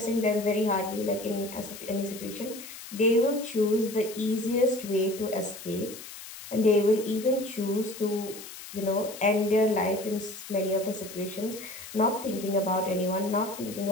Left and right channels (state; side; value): noise; left; hiss, 13 dB below the sound